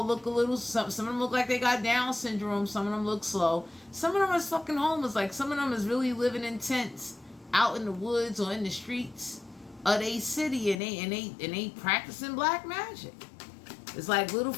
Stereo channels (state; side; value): drops out; right; at 10.8 s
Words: look a little... Some of them look like they got Down syndrome. Some of them look slow. Some of them is fucking homeless. Like some of them is really living in tents out in the woods or in the streets of they city, and they practicing black magic. It's like little